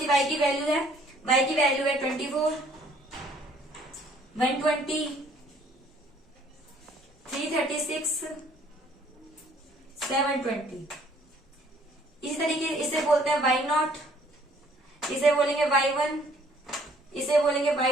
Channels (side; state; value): both; normal; correlation 0.60